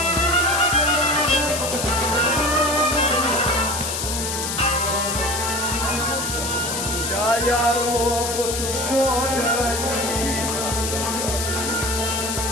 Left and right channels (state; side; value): noise; left; hiss, 3 dB below the sound